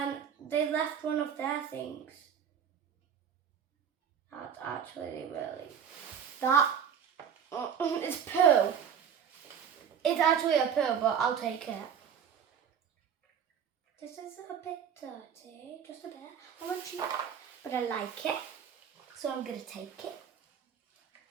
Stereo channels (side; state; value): left; quieter; 7.9 dB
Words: they left one of their things. That's actually really... That is poo. It's actually a poo, but I'll take it. This is a bit dirty, just a bit. I'm not cheap, but I like it. So I'm going to take it.